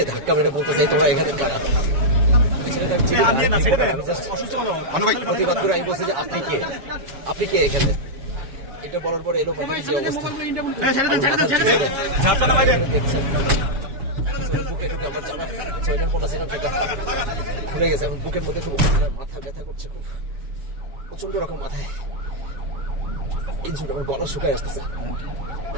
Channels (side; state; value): left; late; 7.4 ms